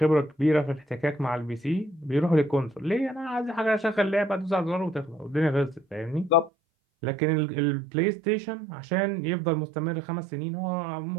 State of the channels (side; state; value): left; drops out; at 6.5 s